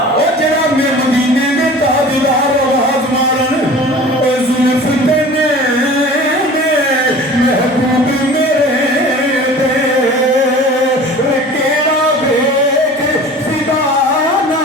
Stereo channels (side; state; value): both; normal; correlation 0.42